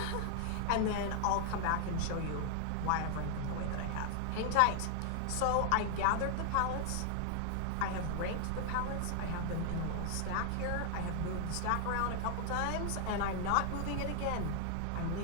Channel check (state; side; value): different; both; correlation 0.00